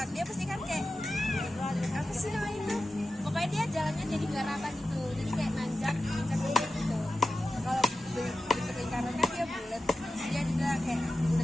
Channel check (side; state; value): both; normal; correlation 0.92